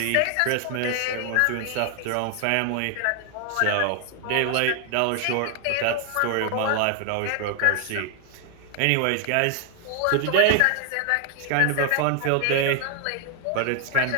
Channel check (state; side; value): different; both; correlation 0.00